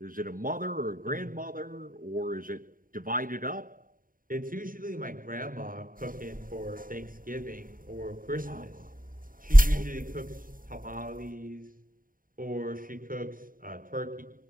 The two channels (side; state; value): left; late; 0.41 ms